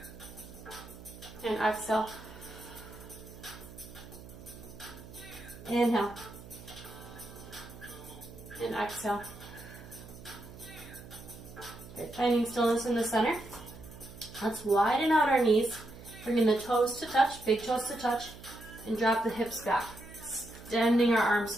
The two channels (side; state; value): right; noise; hum, 16 dB below the sound